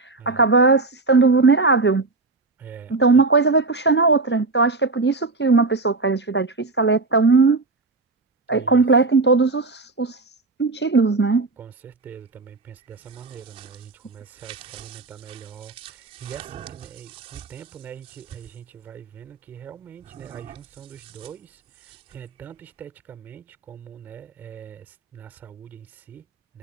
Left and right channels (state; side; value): quieter; left; 3.7 dB